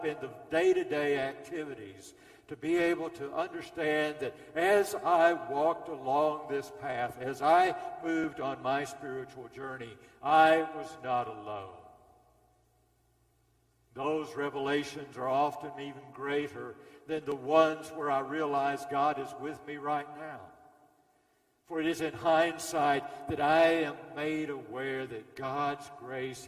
in the day-to-day activities to be able to understand that as I walked along this path, as I moved on my spiritual journey, I was not alone. Those revelations are often even greater than the ones where I realize God is with me right now. For it is in hindsight that I am made aware that God's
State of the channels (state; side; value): identical; both; correlation 1.00